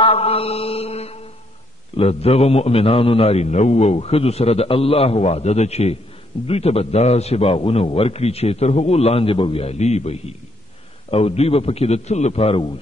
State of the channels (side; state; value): both; normal; correlation 0.72